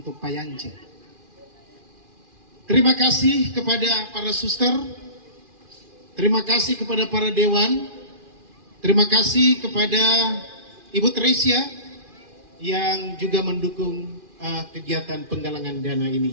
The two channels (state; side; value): late; left; 2.4 ms